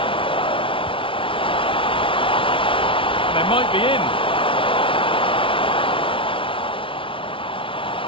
They might be in.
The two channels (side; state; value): right; late; 0.25 ms